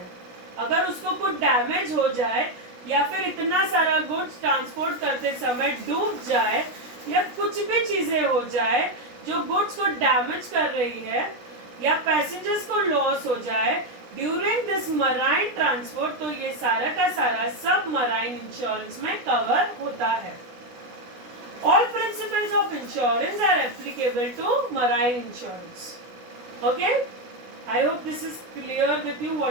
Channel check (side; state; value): left; late; 16 ms